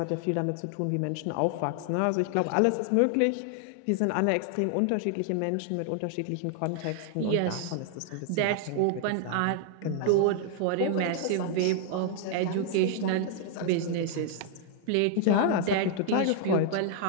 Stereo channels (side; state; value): both; different; correlation 0.00